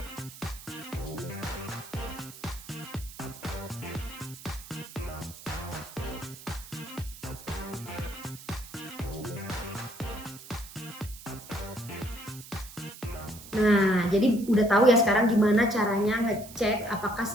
Nah, jadi udah tahu ya sekarang gimana caranya ngecek apakah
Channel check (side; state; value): right; noise; hiss, 16 dB below the sound